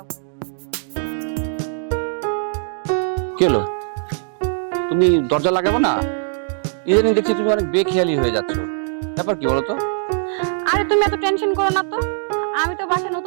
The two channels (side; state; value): left; silent; digital silence